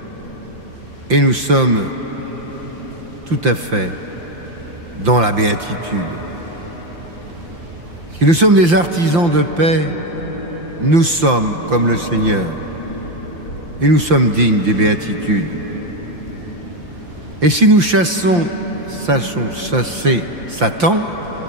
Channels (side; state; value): left; late; 5.8 ms